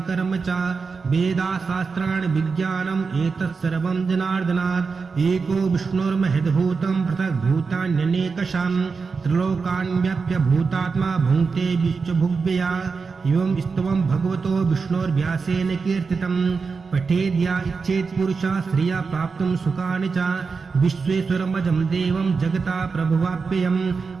च वेदा शास्त्राणि विज्ञानम् एतत् सर्वं जनार्दनात् एको विष्णुर्महद्भूतं पृथग्भूतान्यनेकषां त्रिलोकान् व्याप्य भूतात्मा भुङ्क्ते विश्वभुग्व्यया एवं स्तवं भगवतो विष्णोर्व्यासेन कीर्तितं पठेद्या इच्छेत् पुरुषः श्रिया प्राप्तुं सुखानि च विश्वेश्वरमजं देवं जगता प्रभुवाप्ययं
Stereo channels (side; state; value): left; quieter; 4.9 dB